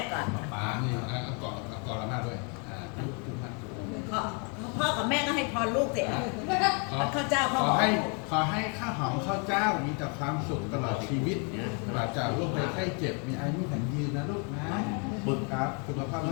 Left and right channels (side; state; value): right; quieter; 36.1 dB